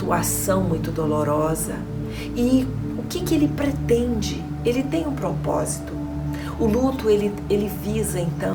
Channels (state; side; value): identical; both; correlation 1.00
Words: muito dolorosa. E o que ele pretende? Ele tem um propósito. O luto, ele visa,